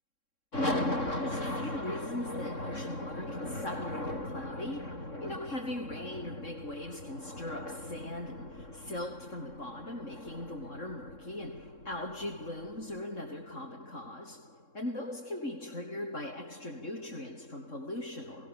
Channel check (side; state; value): right; late; 3.6 ms